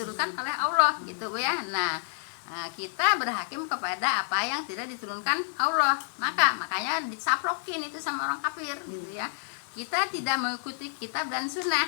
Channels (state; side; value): silent; right; digital silence